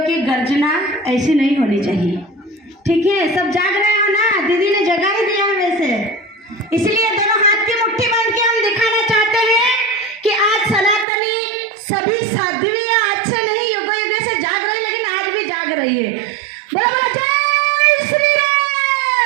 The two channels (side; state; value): left; drops out; at 11.1 s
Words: गर्जना ऐसी नहीं होनी चाहिए। ठीक है, सब जाग रहे हो ना? दीदी ने जगा ही दिया है वैसे, इसलिए दोनों हाथ की मुट्ठी बांध के हम दिखाना चाहते हैं कि आज सनातनी सभी साध्वियां आज से नहीं युगों युगों से जाग रही, लेकिन आज भी जाग रही है। बोला बोला जय श्री